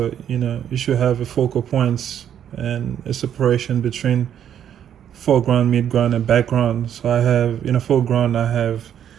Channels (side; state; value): left; quieter; 9.6 dB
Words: You should have a focal points and a separation between foreground, midground, and background. So I have in a foreground, I have,